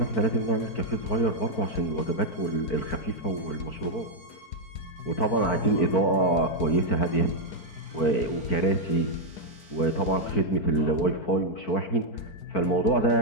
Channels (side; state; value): right; late; 4.5 ms